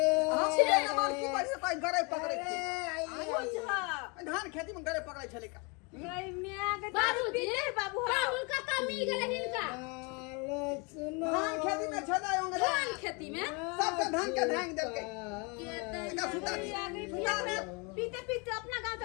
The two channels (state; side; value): quieter; right; 31.2 dB